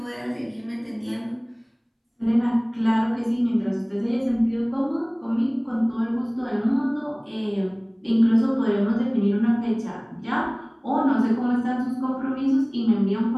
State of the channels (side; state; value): both; identical; correlation 1.00